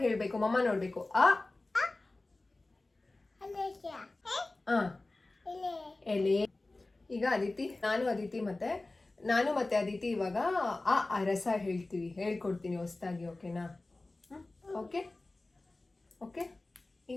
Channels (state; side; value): quieter; right; 3.0 dB